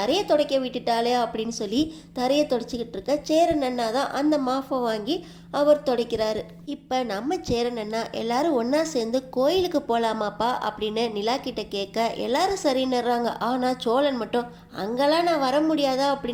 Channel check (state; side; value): identical; both; correlation 1.00